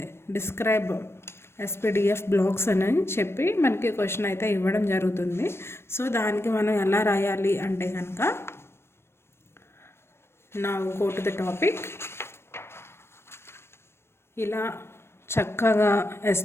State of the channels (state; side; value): late; right; 0.12 ms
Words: డిస్క్రైబ్ ఎస్పీడిఎఫ్ బ్లాక్స్ అని చెప్పి మనకి క్వశ్చన్ అయితే ఇవ్వడం జరుగుతుంది. సో దానికి మనం ఎలా రాయాలి అంటే కనుక, now go to the topic. ఇలా చక్కగా